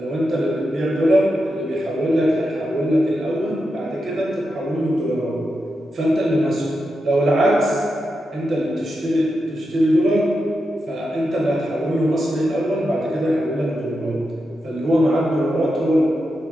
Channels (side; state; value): both; normal; correlation 0.87